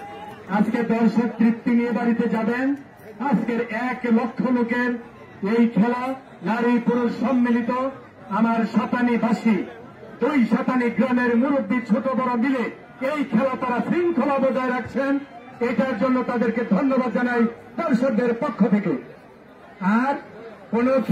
আজকে দর্শক তৃপ্তি নিয়ে বাড়িতে যাবেন। আজকের 1 লক্ষ লোকের এই খেলা, নারী পুরুষ সম্মিলিত। আমার সাতানিবাসী 2 সাতানি গ্রামের মুরব্বী ছোট বড় মিলে এই খেলা তারা শৃঙ্খলা বজায় রাখছেন। এটার জন্য তাদেরকে ধন্যবাদ জানাই দর্শকদের পক্ষ থেকে। আর কোন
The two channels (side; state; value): both; identical; correlation 1.00